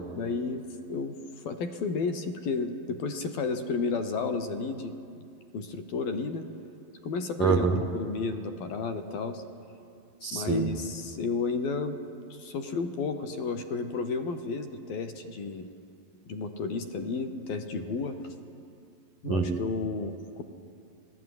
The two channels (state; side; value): late; right; 11 ms